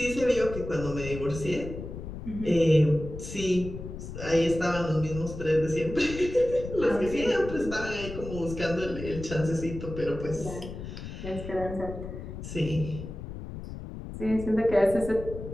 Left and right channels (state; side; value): noise; left; rumble, 9 dB below the sound